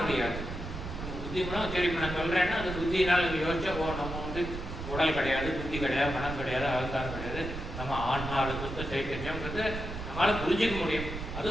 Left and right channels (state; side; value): noise; right; rumble, 7 dB below the sound